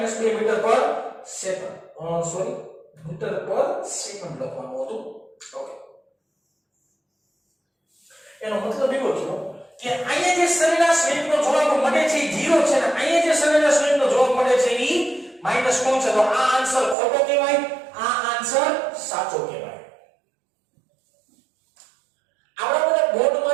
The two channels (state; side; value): drops out; left; at 16.9 s